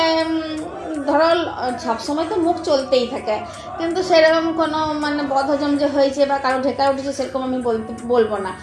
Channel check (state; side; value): identical; both; correlation 1.00